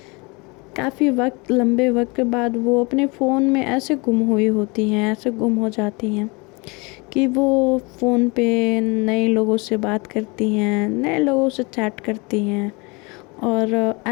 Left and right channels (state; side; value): quieter; right; 28.2 dB